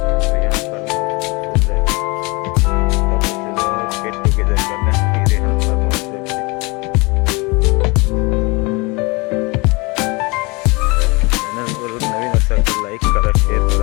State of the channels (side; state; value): right; quieter; 26.9 dB